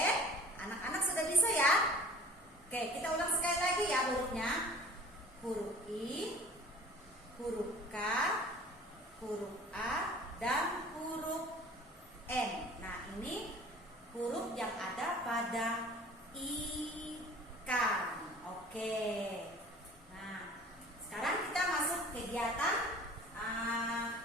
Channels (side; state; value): both; normal; correlation 0.46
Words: anak-anak sudah bisa ya? Oke, kita ulang sekali lagi ya hurufnya. Huruf I, huruf K, huruf A, dan huruf N. Nah, ini huruf yang ada pada ikan. Oke. Nah, sekarang kita masuk kegiatan